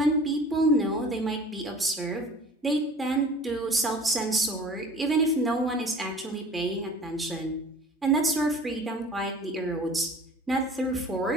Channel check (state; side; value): normal; both; correlation 0.45